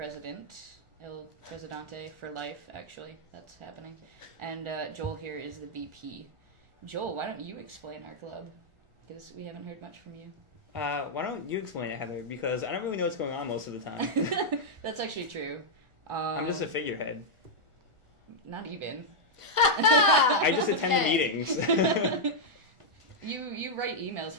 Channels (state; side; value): late; left; 1.4 ms